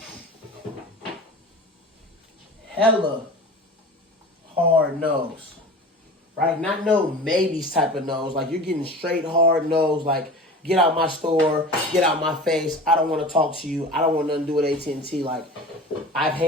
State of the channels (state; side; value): normal; both; correlation 0.36